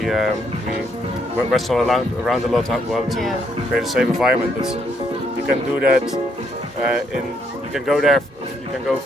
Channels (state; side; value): normal; both; correlation 0.73